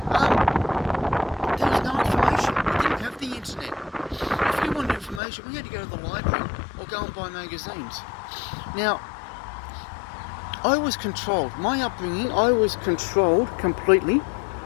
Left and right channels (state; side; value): drops out; right; at 5.2 s